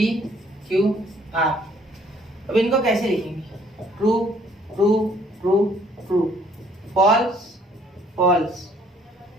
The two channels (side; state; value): both; normal; correlation 0.61